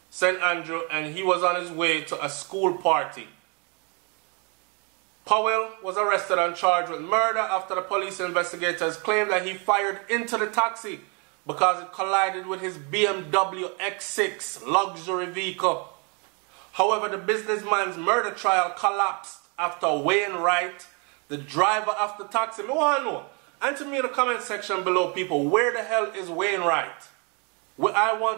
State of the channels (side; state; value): left; quieter; 33.8 dB